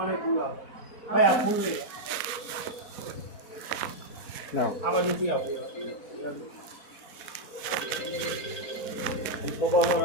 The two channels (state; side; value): late; right; 4.1 ms